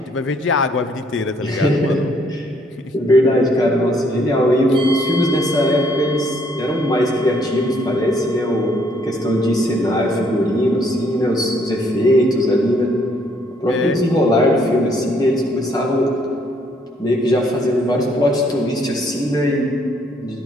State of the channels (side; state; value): both; normal; correlation 0.67